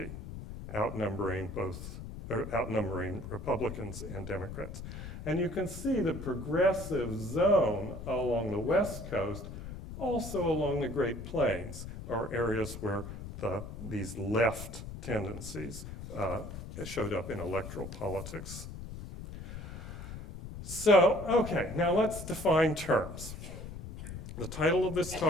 outnumbering Republicans and Democrats. And you can see the progressive zone along the West Coast, also along the Great Plains, are areas where these left tendencies showed up in electoral politics. So, okay, now let's define terms. The title of this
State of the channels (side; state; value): left; noise; rumble, 10 dB below the sound